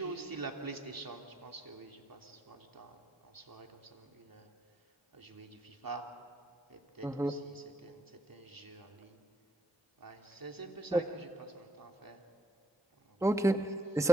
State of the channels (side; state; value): both; normal; correlation 0.75